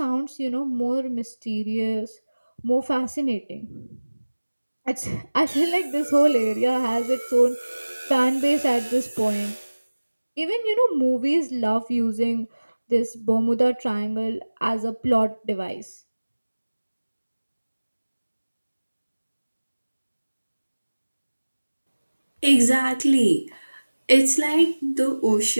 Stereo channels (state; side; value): inverted; both; correlation -1.00